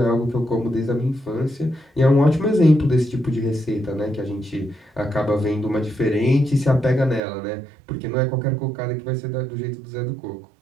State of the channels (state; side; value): drops out; left; at 7.2 s